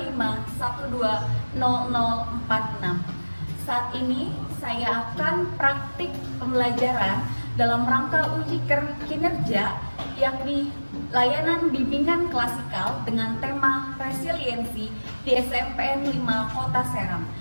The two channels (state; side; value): inverted; both; correlation -1.00